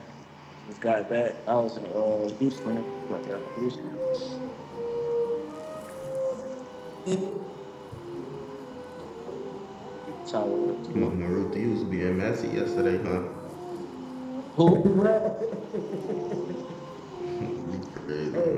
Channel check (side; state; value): both; identical; correlation 1.00